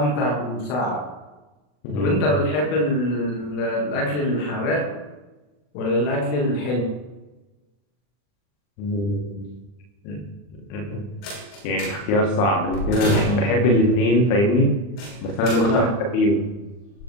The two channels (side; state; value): right; late; 40 ms